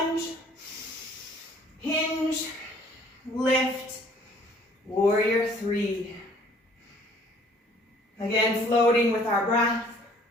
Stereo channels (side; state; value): both; normal; correlation 0.57